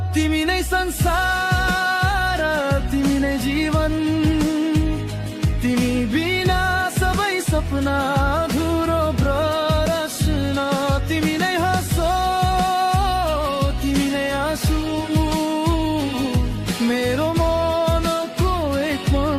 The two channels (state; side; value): identical; both; correlation 1.00